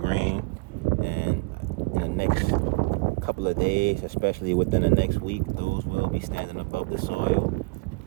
And in the next couple of days, especially within the next week, those will be standing above the soil.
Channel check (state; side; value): quieter; left; 27.1 dB